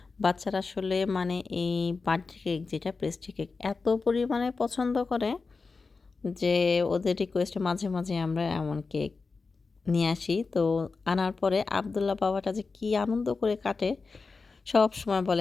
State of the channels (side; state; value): right; quieter; 4.3 dB